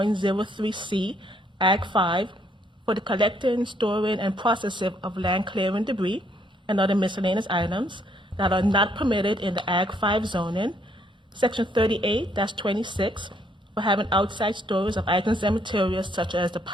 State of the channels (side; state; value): both; normal; correlation 0.69